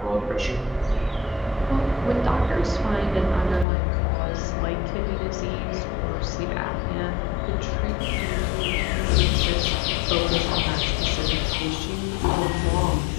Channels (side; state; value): right; drops out; at 3.7 s